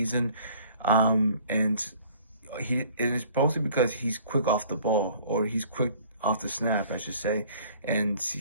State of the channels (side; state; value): both; inverted; correlation -0.53